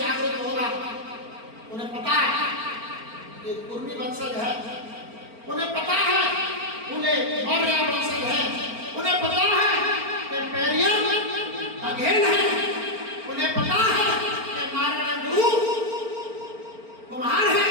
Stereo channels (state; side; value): late; left; 4.4 ms